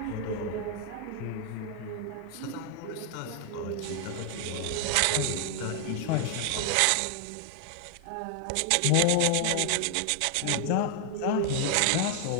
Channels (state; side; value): different; both; correlation 0.00